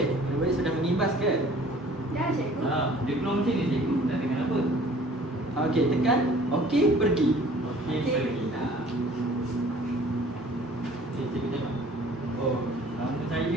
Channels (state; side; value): normal; both; correlation 0.52